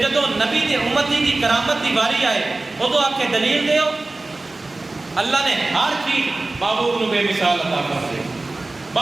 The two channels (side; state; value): left; quieter; 3.1 dB